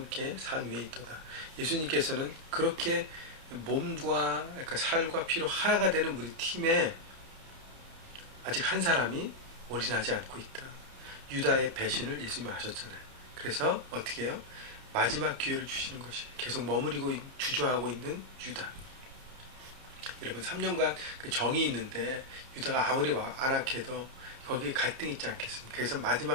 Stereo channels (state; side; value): late; left; 30 ms